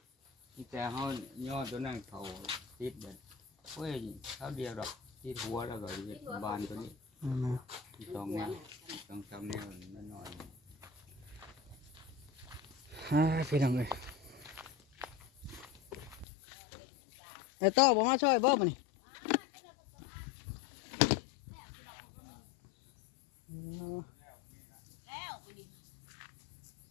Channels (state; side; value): drops out; right; at 16.2 s